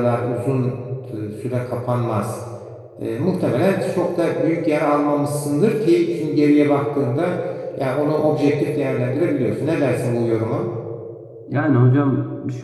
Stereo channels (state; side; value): identical; both; correlation 1.00